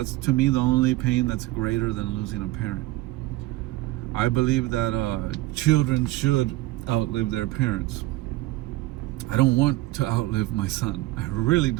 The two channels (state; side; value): quieter; left; 17.5 dB